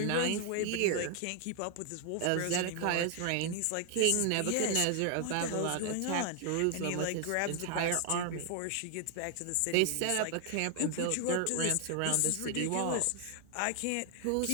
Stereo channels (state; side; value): different; both; correlation 0.00